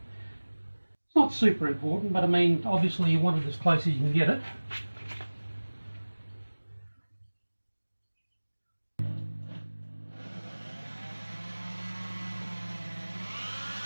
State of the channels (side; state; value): both; inverted; correlation -1.00